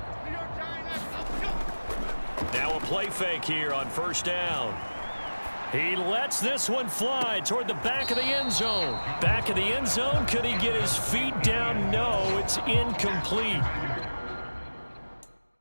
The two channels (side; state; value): both; inverted; correlation -1.00